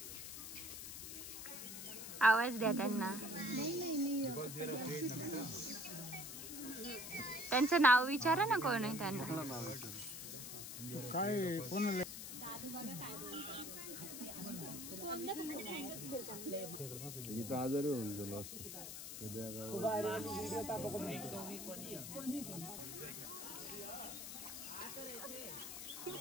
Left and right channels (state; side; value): noise; left; hiss, 8 dB below the sound